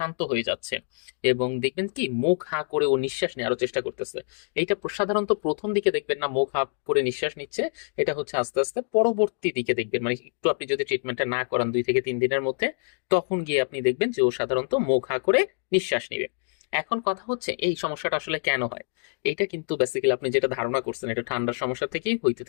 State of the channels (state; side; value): silent; right; digital silence